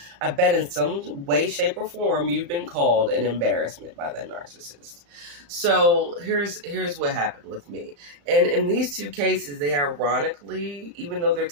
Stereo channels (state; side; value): late; left; 35 ms